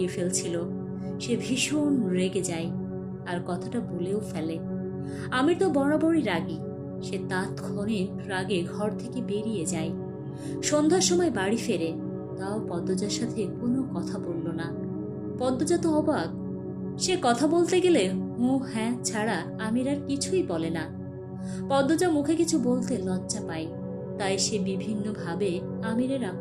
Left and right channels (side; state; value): both; identical; correlation 1.00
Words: ফেলছিল। সে ভীষণ রেগে যায় আর কথাটা বলেও ফেলে। আমির তো বরাবরই রাগী। সে তৎক্ষণিক রাগে ঘর থেকে বেরিয়ে যায়। সন্ধ্যার সময় বাড়ি ফেরে, তাও পদ্মজার সাথে কোনো কথা বলল না। পদ্মজা তো অবাক। সে কথা বলতে গেলে হু হ্যাঁ ছাড়া আমির আর কিছুই বলে না। পদ্মজা মুখে কিছু বলতে লজ্জা পায়, তাই সে বিভিন্নভাবে আমিরের